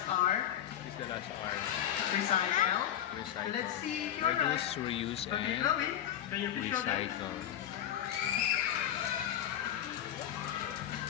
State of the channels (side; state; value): right; quieter; 10.9 dB